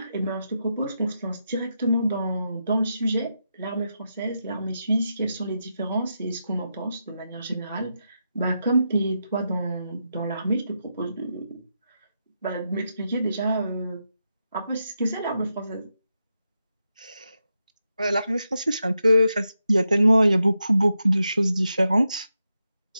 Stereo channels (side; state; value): both; inverted; correlation -0.86